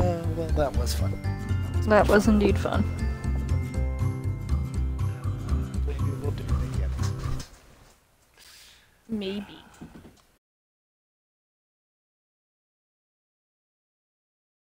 that was fun. That was indeed fun. Maybe we'll do it again. Maybe.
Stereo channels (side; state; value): both; identical; correlation 1.00